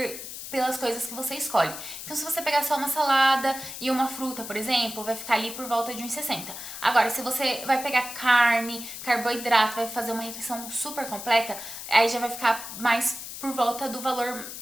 pelas coisas que você escolhe. Então, se você pegar só uma salada e uma fruta, por exemplo, vai ficar ali por volta de 1,60. Agora, se você vai pegar carne, carboidrato, vai fazer uma refeição super completa, aí já vai ficar mais por volta do valor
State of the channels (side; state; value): left; noise; hiss, 10 dB below the sound